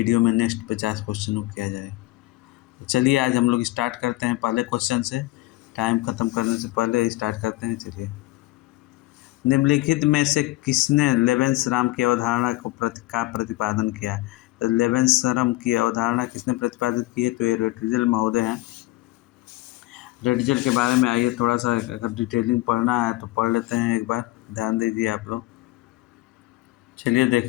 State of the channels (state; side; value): quieter; right; 19.4 dB